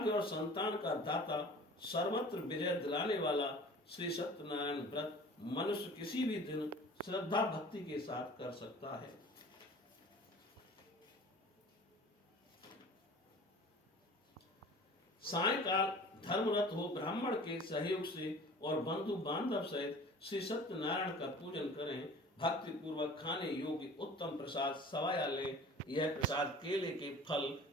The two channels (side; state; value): both; normal; correlation 0.43